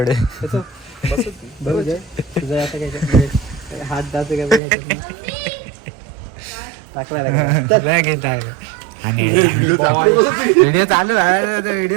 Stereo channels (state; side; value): drops out; left; at 4.6 s